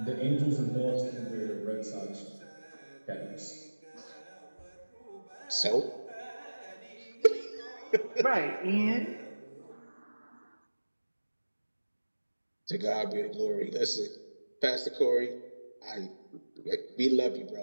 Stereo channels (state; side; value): inverted; both; correlation -1.00